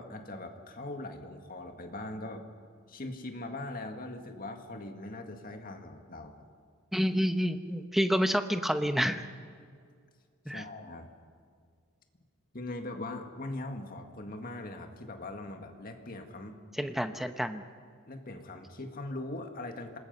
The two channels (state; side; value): normal; both; correlation 0.84